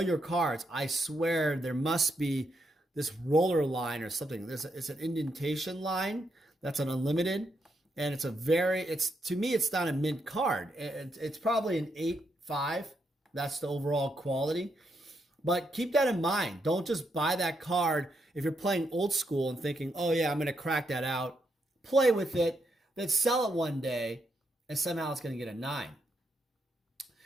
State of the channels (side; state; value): both; normal; correlation 0.80